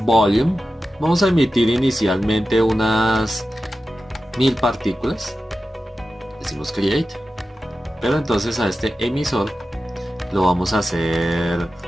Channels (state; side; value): normal; both; correlation 0.93